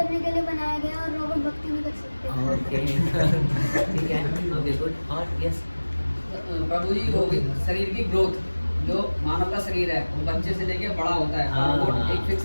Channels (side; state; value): both; inverted; correlation -1.00